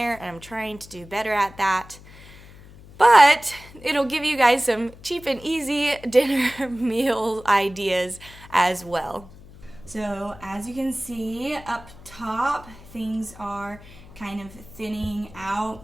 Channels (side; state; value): left; noise; hum, 20 dB below the sound